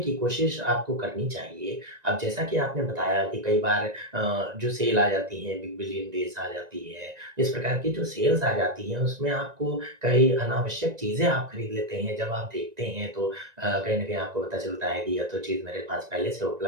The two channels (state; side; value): late; left; 1.9 ms